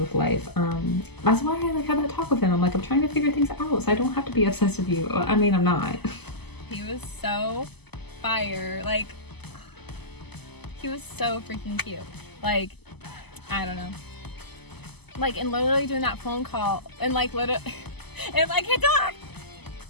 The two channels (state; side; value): late; right; 0.98 ms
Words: life. That's why I like had that talk with him. I'm like, I'm trying to figure things out so I don't have to be obsessed with you. I mean, I'm not. He was so fire. Like, he was so freaking cute. Like, I don't know. Like, and literally doing that phone call and like literally, and I can't talk.